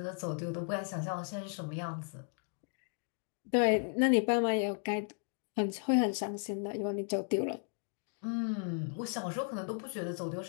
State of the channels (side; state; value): right; silent; 54 dB below the other